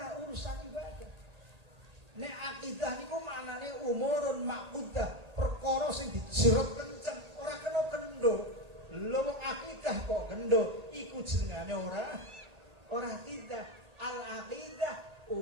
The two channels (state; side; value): late; left; 1.8 ms